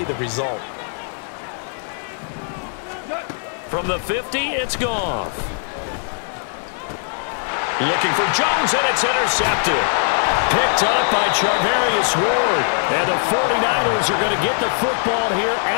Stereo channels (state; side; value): silent; right; 65 dB below the other